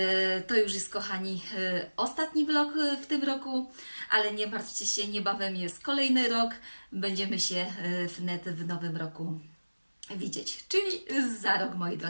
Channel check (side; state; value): both; inverted; correlation -1.00